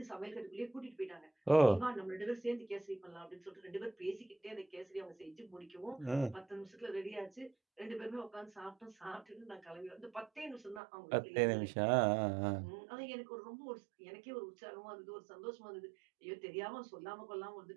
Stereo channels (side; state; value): left; drops out; at 10.8 s